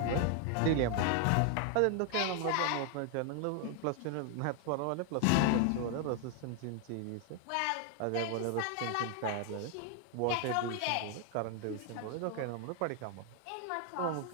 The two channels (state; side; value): different; both; correlation 0.00